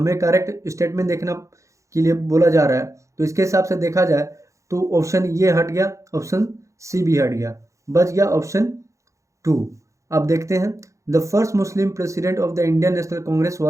करेक्ट स्टेटमेंट देखना के लिए बोला जा रहा है। तो इसके हिसाब से देखा जाए तो ऑप्शन ये हट गया, ऑप्शन सी भी हट गया, बच गया ऑप्शन 2। अब देखते हैं, the first Muslim president of the Indian National Congress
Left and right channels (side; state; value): left; late; 0.15 ms